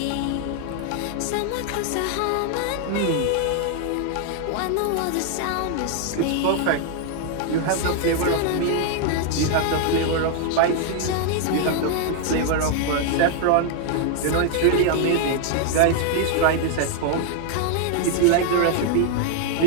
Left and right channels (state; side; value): different; both; correlation 0.00